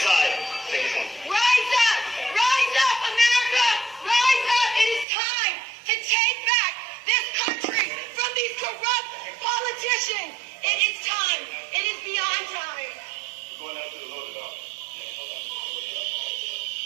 Rise up! Rise up, America! Rise up! It is time to take back this country from these corrupt politicians. It is time. It is beyond time.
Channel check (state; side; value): drops out; left; at 5.1 s